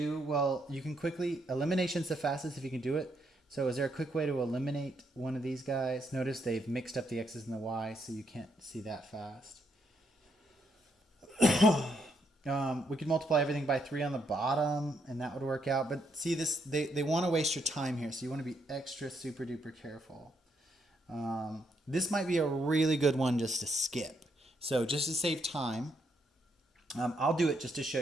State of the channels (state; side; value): normal; both; correlation 0.76